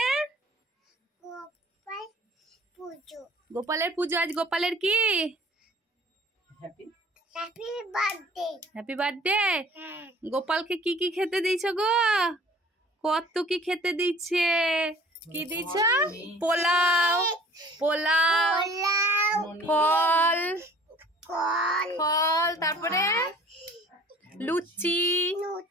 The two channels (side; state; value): both; normal; correlation 0.50